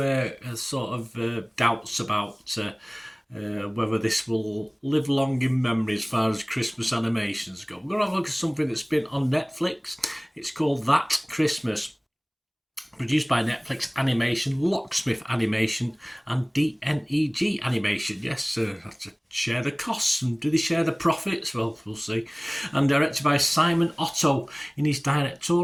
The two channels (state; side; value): identical; both; correlation 1.00